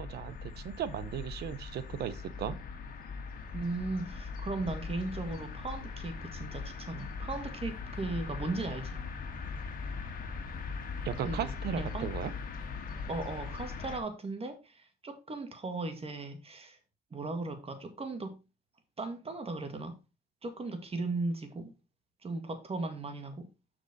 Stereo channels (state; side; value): normal; both; correlation 0.55